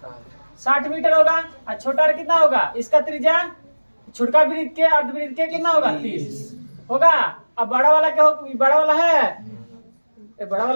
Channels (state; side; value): inverted; both; correlation -1.00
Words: 60 मीटर होगा, और छोटा आर कितना होगा, इसका त्रिज्या छोटा वृत्त के अर्धवृत्त के कितना होगा 30 होगा। अब बड़ा वाला क्या होगा, बड़ा वाला है, बड़ा